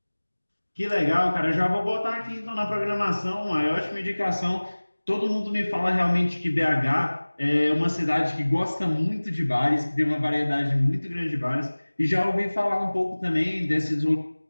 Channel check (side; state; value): both; inverted; correlation -1.00